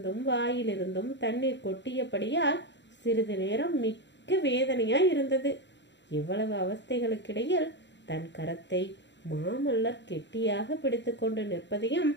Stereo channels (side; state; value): right; late; 0.52 ms